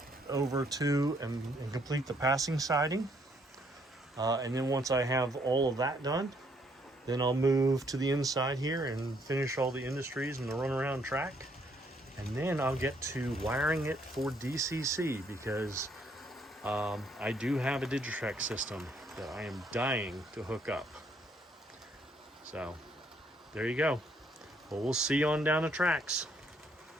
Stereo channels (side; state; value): both; normal; correlation 0.69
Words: over to and complete the passing siding. And then once I have all of that done, then I'll move to the inside here and finish all the industries and the runaround track. And then I'll get to wiring it for DCC, because I do have a Digitrax system that I am dying to hook up. So there you go. Well, we'll see you on down the tracks.